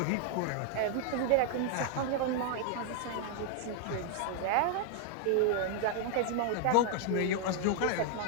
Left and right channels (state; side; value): different; both; correlation 0.00